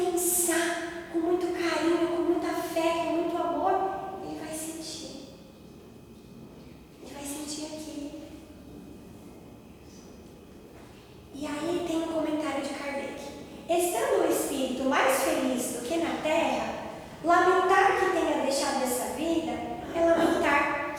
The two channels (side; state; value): both; identical; correlation 1.00